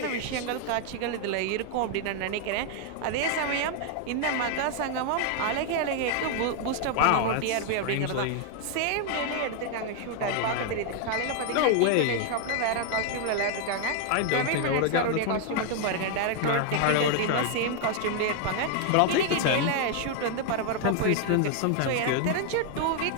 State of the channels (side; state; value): both; different; correlation 0.00